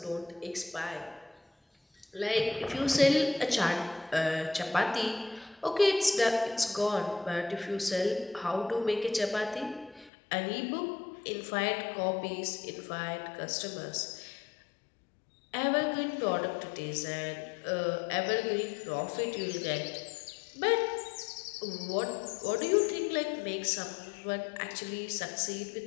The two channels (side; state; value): right; drops out; at 10.1 s